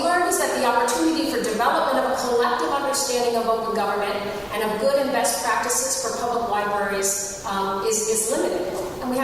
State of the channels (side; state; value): both; identical; correlation 1.00